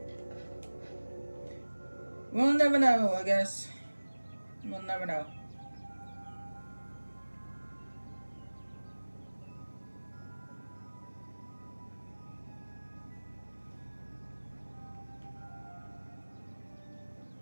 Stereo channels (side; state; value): both; inverted; correlation -1.00